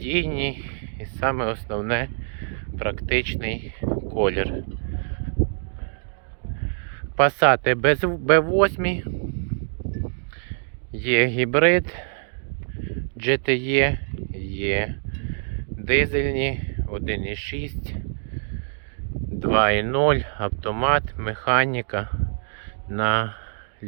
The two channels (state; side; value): silent; left; digital silence